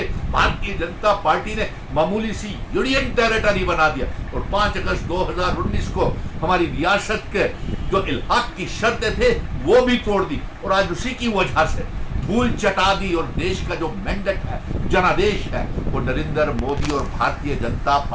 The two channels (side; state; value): both; identical; correlation 1.00